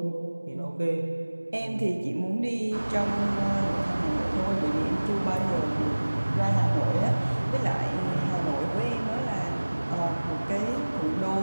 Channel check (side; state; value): both; inverted; correlation -1.00